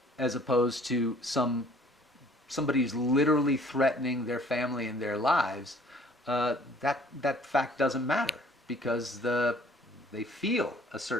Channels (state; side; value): normal; both; correlation 0.56